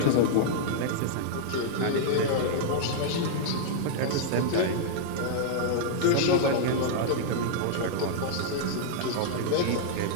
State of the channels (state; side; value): different; both; correlation -0.01